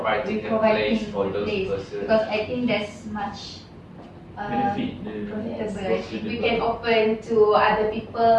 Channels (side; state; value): both; identical; correlation 1.00